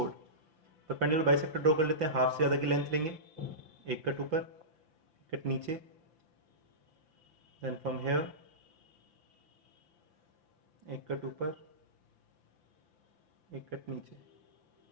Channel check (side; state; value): left; late; 5.9 ms